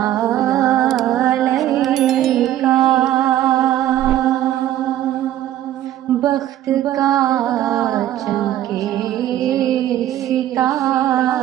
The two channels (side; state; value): left; quieter; 12.6 dB